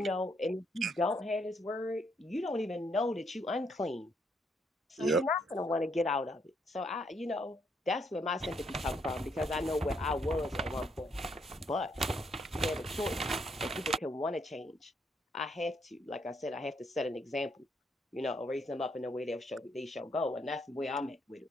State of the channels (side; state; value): both; normal; correlation 0.73